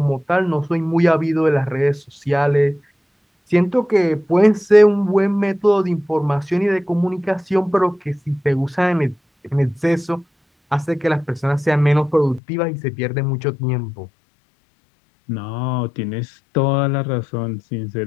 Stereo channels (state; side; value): drops out; right; at 12.4 s